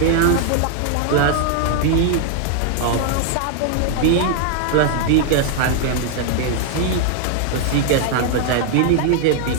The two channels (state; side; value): different; both; correlation 0.00